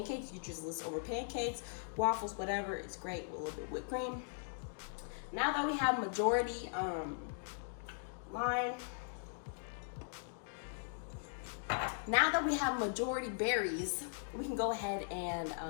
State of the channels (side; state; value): right; silent; digital silence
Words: You just list over pancakes, waffles, whatever. It's great with a little bit of whipped cream. Now that we have majority now that we have majority berries, we can go ahead and